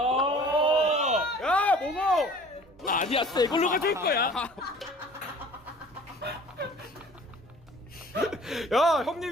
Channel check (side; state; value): both; normal; correlation 0.49